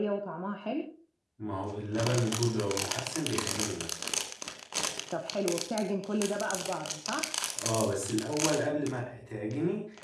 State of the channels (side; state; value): both; identical; correlation 1.00